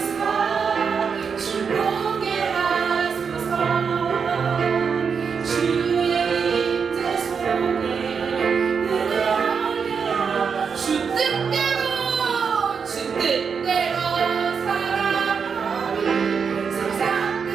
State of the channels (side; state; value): left; quieter; 6.1 dB